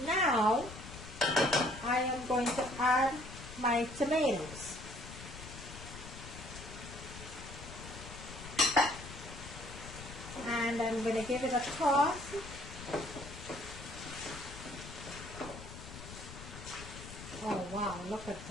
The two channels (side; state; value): left; noise; rumble, 12 dB below the sound